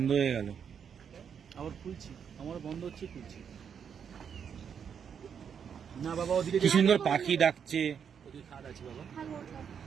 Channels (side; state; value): left; quieter; 7.4 dB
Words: হয়ে গেল, আবার খুলছি, আমার বন্ধ হচ্ছে, খুলছি না বাবা। ওদিকে কি সুন্দর পাখি ডাকছে। ওদিকে খাদ আছে বাবা।